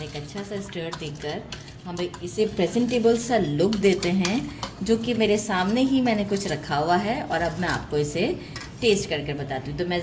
एक अच्छा सा स्टर देकर हम इसे प्रेजेंटेबल सा लुक देते हैं, जो कि मेरे सामने ही मैंने कुछ रखा हुआ है और अब मैं आपको इसे टेस्ट करके बताती हूँ। तो मैं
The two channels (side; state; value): both; identical; correlation 1.00